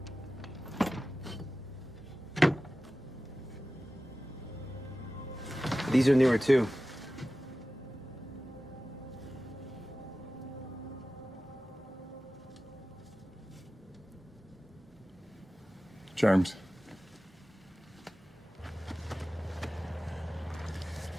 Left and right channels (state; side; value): normal; both; correlation 0.95